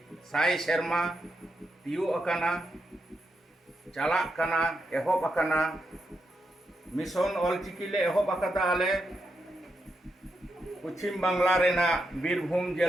साई शर्मा तियो अकाना चालाक काना एहब अकाना मिशन ऑलचिकी ले एहब अकादा आले पश्चिम बांगला रेना बीरभूम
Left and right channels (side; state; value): both; normal; correlation 0.84